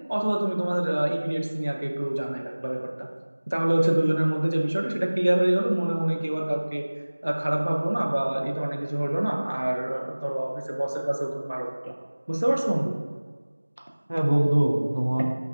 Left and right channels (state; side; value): inverted; both; correlation -1.00